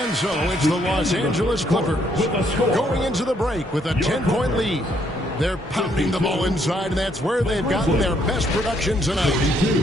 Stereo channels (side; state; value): both; normal; correlation 0.70